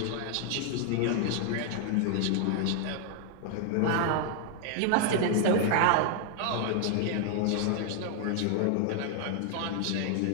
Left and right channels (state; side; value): different; both; correlation 0.00